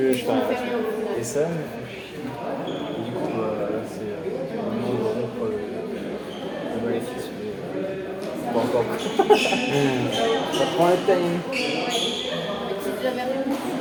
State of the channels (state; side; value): identical; both; correlation 1.00